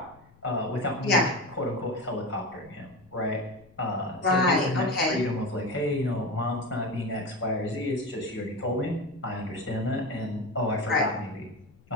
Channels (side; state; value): left; noise; rumble, 27 dB below the sound